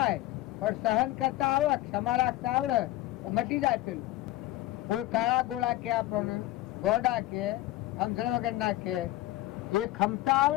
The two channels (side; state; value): right; quieter; 16.2 dB